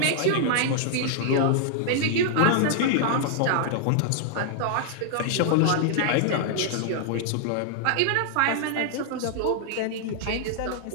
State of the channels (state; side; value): different; both; correlation -0.01